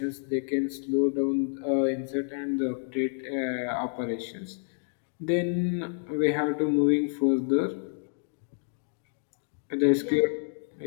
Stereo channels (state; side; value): silent; right; digital silence